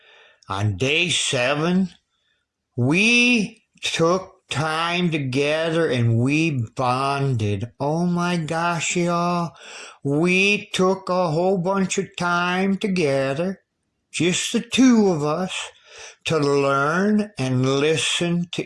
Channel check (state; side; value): identical; both; correlation 1.00